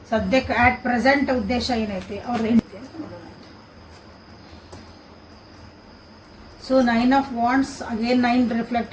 ಸದ್ಯಕ್ಕೆ ಆಟ್ ಪ್ರೆಸೆಂಟ್ ಉದ್ದೇಶ ಏನೈತಿ ಅವ್ರದ್ದು ನೋಡೋಣ ಅಂತ. So 9 of wands again 9 reflect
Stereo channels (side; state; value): both; identical; correlation 1.00